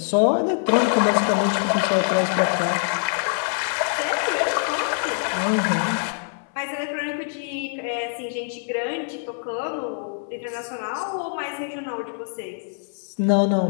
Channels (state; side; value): silent; right; 63 dB below the other